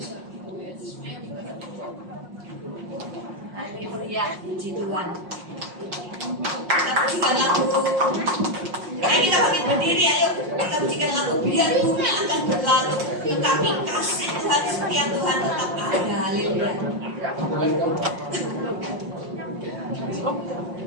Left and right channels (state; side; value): late; left; 5.6 ms